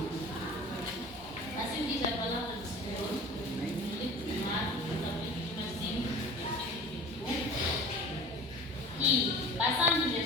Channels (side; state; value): both; normal; correlation 0.41